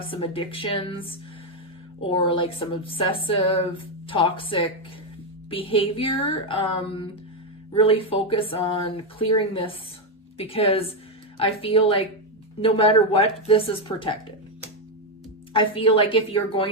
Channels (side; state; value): both; normal; correlation 0.05